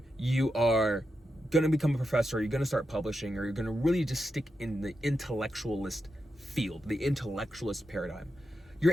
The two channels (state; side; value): normal; both; correlation 0.87